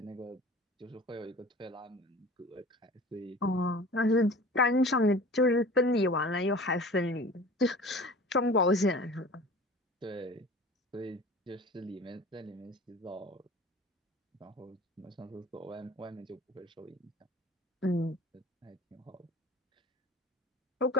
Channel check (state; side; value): normal; both; correlation 0.41